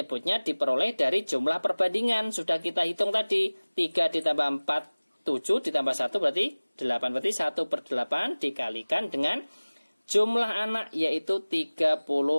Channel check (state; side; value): inverted; both; correlation -1.00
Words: diperoleh dari jumlah perbandingan. Sudah kita hitung tadi. 3 ditambah 4 7 ditambah 1 berarti 8. Berarti 1 per 8 dikalikan dengan jumlah anak yaitu 32